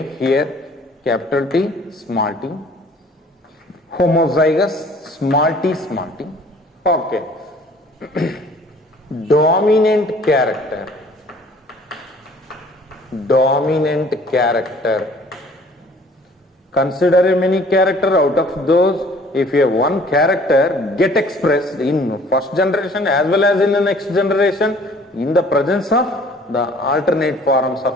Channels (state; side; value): normal; both; correlation 0.54